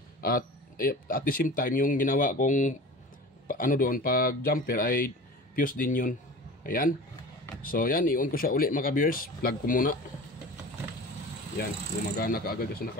At the same time, yung ginawa kong doon pag jumper ay fuse din yun. Ayan. So yan, i-on ko siya uli mga ka-viewers. Plug ko muna. Yan, gumagana kaagad kasi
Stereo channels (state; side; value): normal; both; correlation 0.37